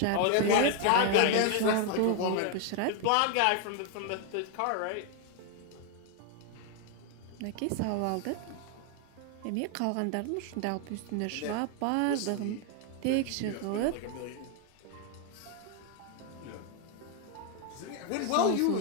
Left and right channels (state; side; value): different; both; correlation 0.01